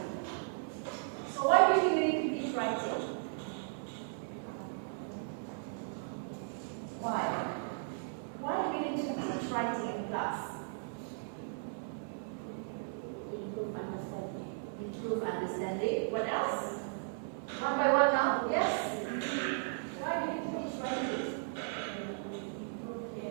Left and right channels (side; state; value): left; silent; digital silence